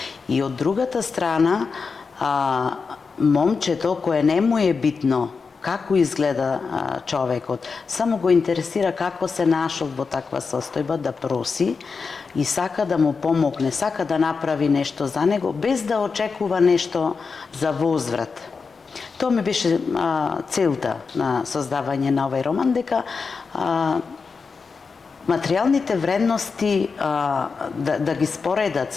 И од другата страна, момчето кое не му е битно како изгледа човекот, само го интересира како се нашол во таква состојба, да проси и сака да му помогне, сака да направи нешто за него, без да очекува нешто за возврат. Тоа ми беше целта на создавање на овој роман, дека материјалните вредности да ги споредат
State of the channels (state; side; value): quieter; right; 4.9 dB